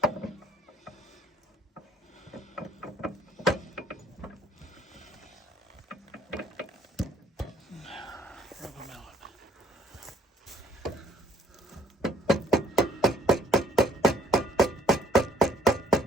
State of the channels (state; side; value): normal; both; correlation 0.61